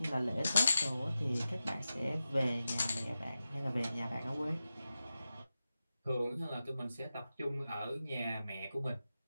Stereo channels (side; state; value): both; inverted; correlation -0.92